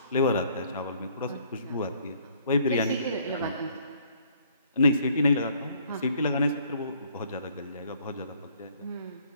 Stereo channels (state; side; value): inverted; both; correlation -0.62